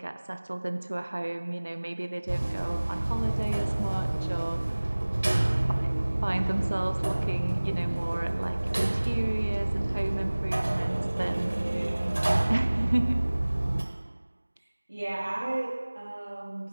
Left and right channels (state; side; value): inverted; both; correlation -1.00